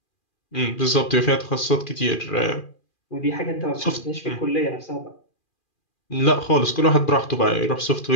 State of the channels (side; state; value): right; late; 2.4 ms